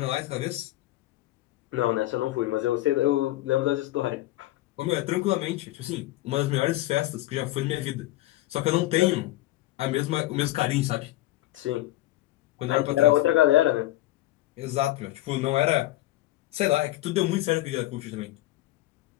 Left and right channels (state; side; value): quieter; right; 16.4 dB